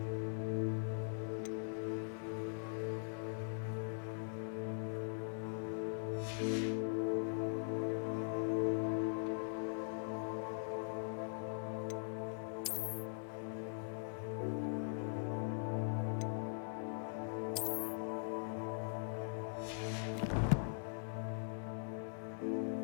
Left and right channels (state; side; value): silent; right; digital silence